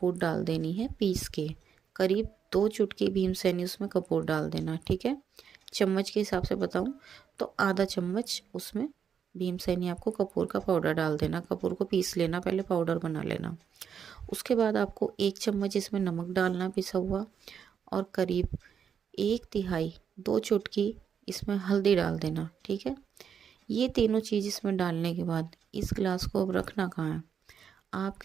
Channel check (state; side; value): quieter; left; 7.6 dB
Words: डाल देनी है पीस के, करीब 2 चुटकी भीमसेनी उसमें कपूर डाल देना, ठीक है। चम्मच के हिसाब से बताऊं तो आधा चम्मच उसमें भीमसेनी आपको कपूर का पाउडर डाल देना। कपूर को पीस लेना, पहले पाउडर बना लेना। उसके बाद आपको 1 चम्मच इसमें नमक डालना पिसा हुआ, और करीब 1/3 2 चुटकी इसमें हल्दी डाल देना, ठीक है। ये तीनों चीज़ इसमें डालने के बाद इस गिलास को अब रखना कहाँ है,